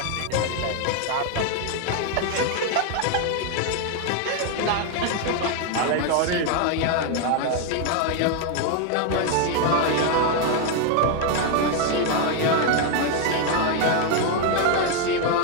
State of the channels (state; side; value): different; both; correlation 0.01